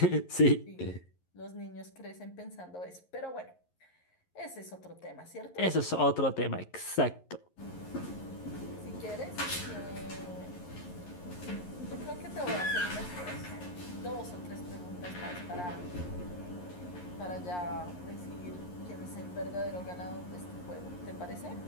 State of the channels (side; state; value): right; late; 11 ms